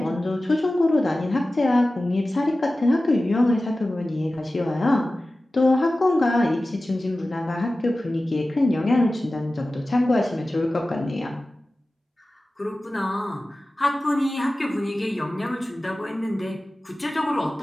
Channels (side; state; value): both; normal; correlation 0.96